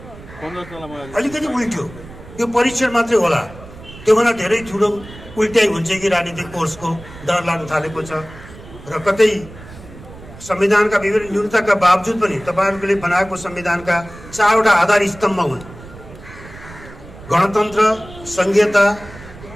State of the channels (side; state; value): right; noise; rumble, 17 dB below the sound